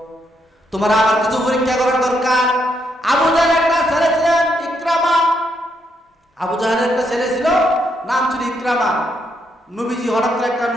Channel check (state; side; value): normal; both; correlation 0.77